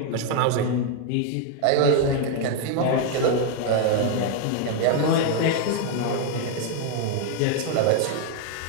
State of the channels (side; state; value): both; different; correlation 0.00